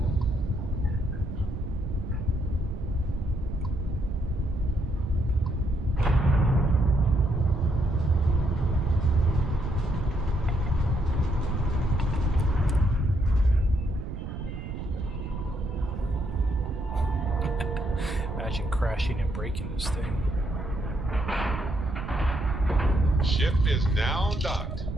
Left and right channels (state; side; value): noise; right; rumble, 7 dB below the sound